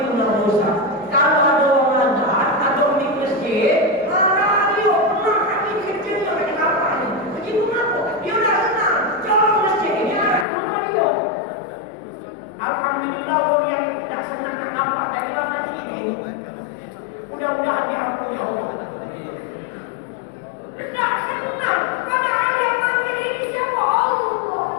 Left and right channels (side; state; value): right; drops out; at 10.5 s